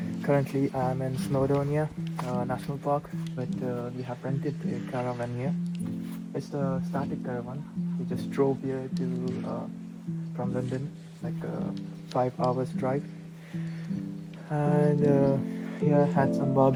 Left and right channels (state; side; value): identical; both; correlation 1.00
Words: currently I'm in Snowdonia National Park, but we have rented a caravan here. It's the static caravan. We just drove here to from London, like 5 hours drive, and yeah, had some